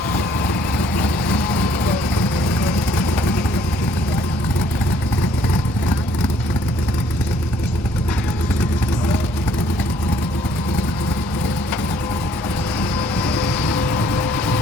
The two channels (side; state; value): both; normal; correlation 0.62